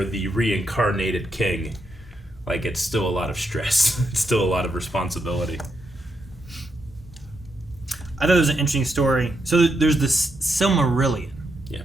the reincarnated king, like it's still a lot of stress. It's still a lot of responsibility. I thought it was an interesting story. So there's this Silmarillion. Yeah.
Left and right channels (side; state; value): both; normal; correlation 0.82